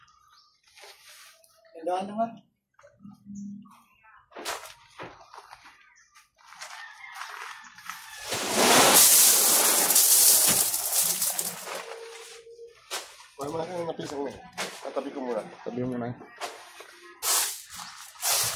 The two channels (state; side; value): identical; both; correlation 1.00